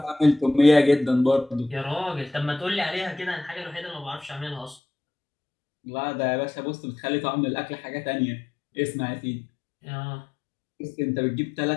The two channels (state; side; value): drops out; right; at 4.8 s